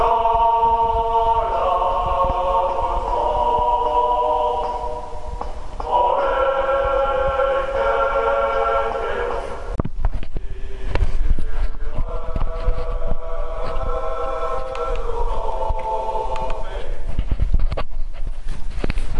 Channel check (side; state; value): both; identical; correlation 1.00